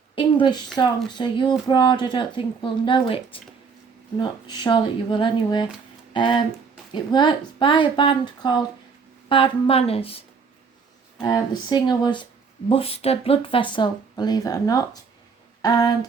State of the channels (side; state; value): left; quieter; 5.3 dB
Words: English song, so you abroad I don't think will know it. I'm not sure that you will anyway. It was by a band called Bad Manners. The singer was Buster Bloodvessel, believe it or not, and